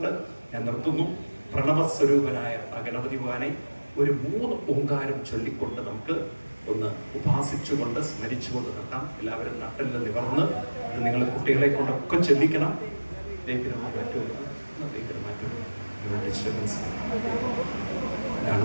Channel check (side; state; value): both; inverted; correlation -1.00